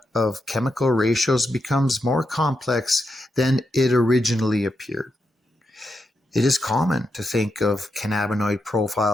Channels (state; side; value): normal; both; correlation 0.85